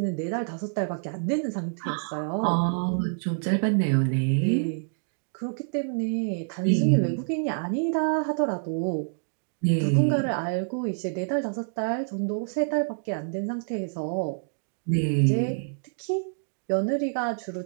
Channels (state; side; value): silent; left; digital silence